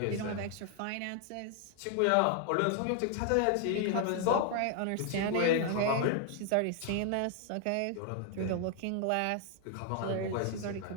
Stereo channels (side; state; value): both; different; correlation 0.00